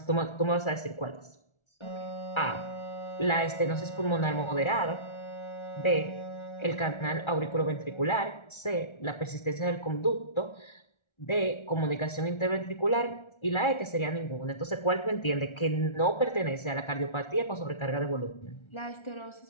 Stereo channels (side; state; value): right; late; 1.4 ms